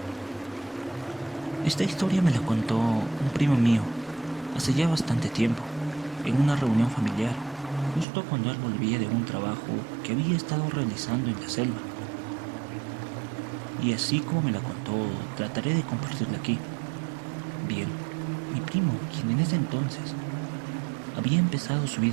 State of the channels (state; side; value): drops out; left; at 8.1 s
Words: esta historia me la contó un primo mío hace ya bastante tiempo, en una reunión familiar, justo cuando él volvía de un trabajo que había estado realizando en la selva. Y así como me la contó, trataré de compartirla aquí. Bien, mi primo, quien en ese entonces había empezado su